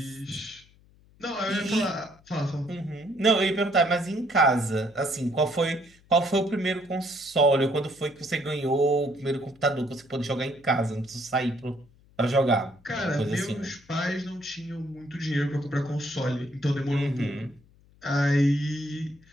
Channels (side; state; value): left; noise; hum, 29 dB below the sound